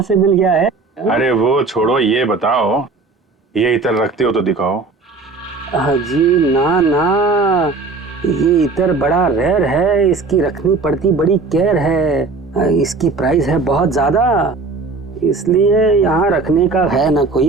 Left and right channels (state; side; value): quieter; left; 3.9 dB